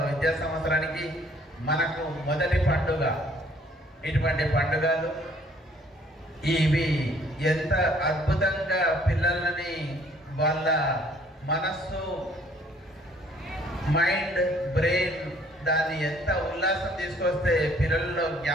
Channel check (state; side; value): normal; both; correlation 0.60